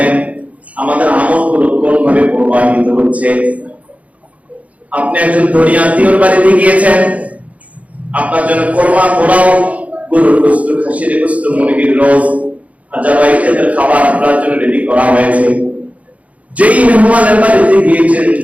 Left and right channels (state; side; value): late; left; 0.067 ms